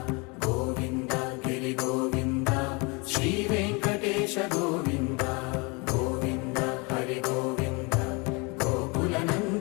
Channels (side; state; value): right; quieter; 29.3 dB